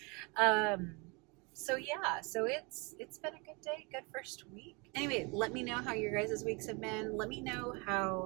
So yeah, so it's been a good day, good first week. Anyway, let me know how your guys' weeks have been. Let me know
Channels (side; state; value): left; quieter; 29.4 dB